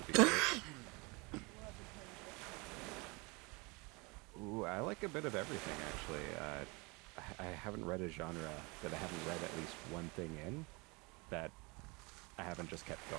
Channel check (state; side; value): quieter; left; 27.5 dB